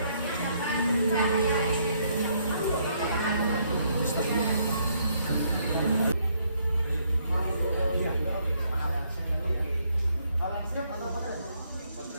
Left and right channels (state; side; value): inverted; both; correlation -0.70